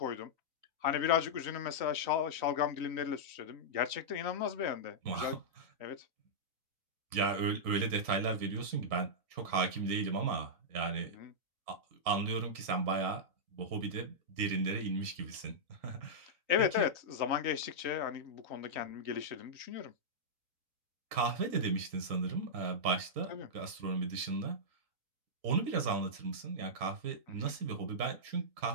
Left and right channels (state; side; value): late; left; 3.9 ms